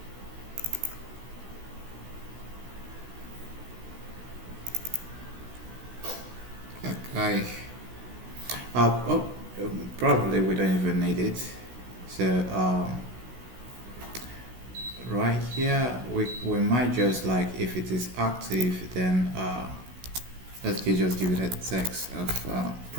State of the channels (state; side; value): late; left; 16 ms